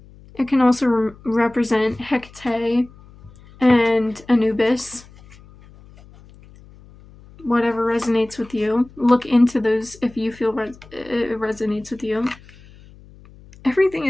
It can also represent Hecate and Anubis. Whatever resonates with you. Look into those if you feel it resonates with you. Everything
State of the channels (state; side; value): noise; left; hum, 23 dB below the sound